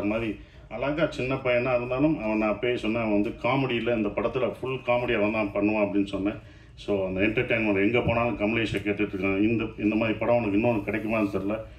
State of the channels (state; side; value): identical; both; correlation 1.00